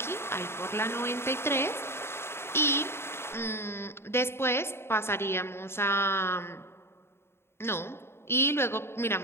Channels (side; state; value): right; late; 0.12 ms